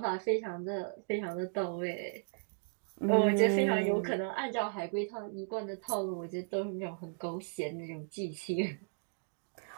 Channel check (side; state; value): left; silent; digital silence